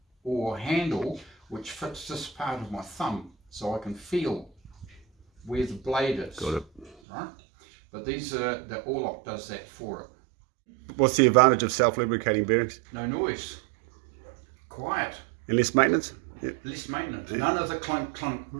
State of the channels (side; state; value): left; drops out; at 7.0 s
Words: oar handle which fits this part of my thumb so I can feel where the blade is. Got it. Right? But the oarlock does that for it. What's the advantage of self-lubricating bearings? No noise. Quiet. And less maintenance? Yep. Less maintenance. None of the clunk, clunk,